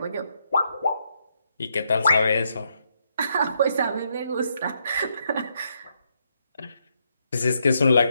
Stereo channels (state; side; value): inverted; both; correlation -0.77